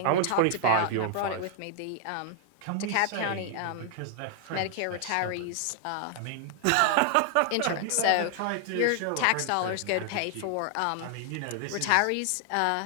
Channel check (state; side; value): different; both; correlation 0.00